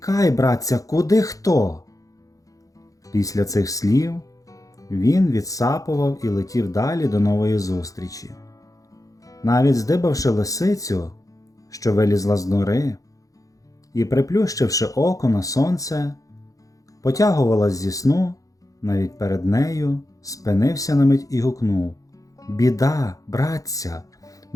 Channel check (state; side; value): late; right; 0.17 ms